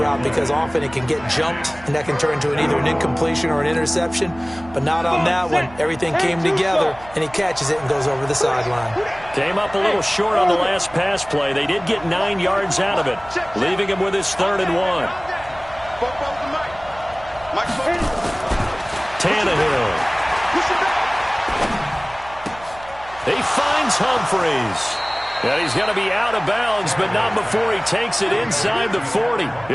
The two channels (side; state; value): right; noise; hum, 20 dB below the sound